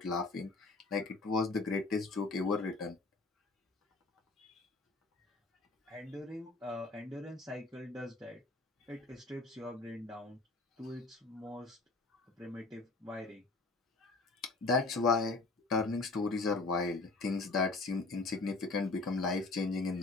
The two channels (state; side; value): quieter; right; 3.6 dB